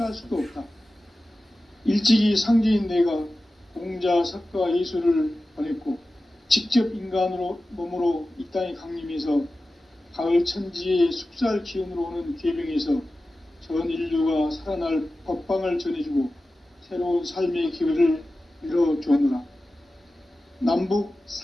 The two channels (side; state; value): both; normal; correlation 0.95